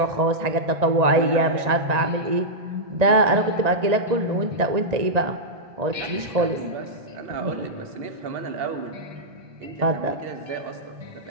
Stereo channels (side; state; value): left; late; 1.9 ms